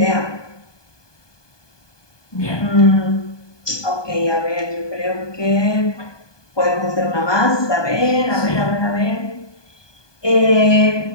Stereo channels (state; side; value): late; right; 1.2 ms